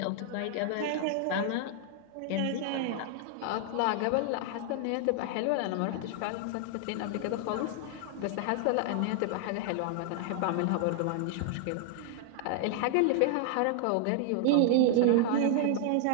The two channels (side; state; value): both; different; correlation 0.00